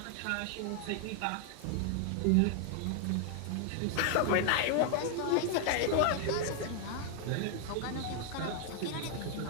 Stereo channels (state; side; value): different; both; correlation 0.00